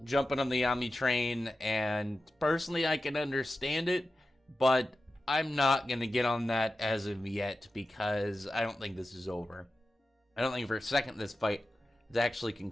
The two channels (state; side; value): normal; both; correlation 0.93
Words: jumping on the Yami train, and personally I can understand it, but I'm not going to get on that as of yet, because I don't think this is over. I don't think for a second this fight is actually